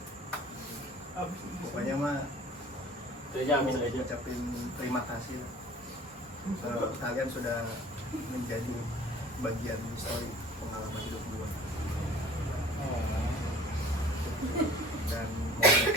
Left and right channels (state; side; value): normal; both; correlation 0.47